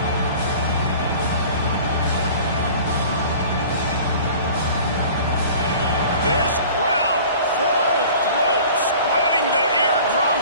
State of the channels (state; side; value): inverted; both; correlation -0.44